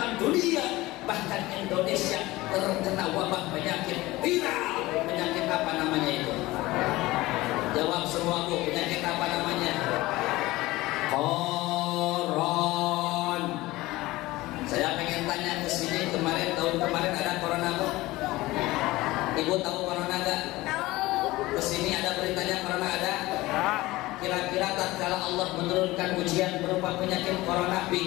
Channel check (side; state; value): right; quieter; 19.1 dB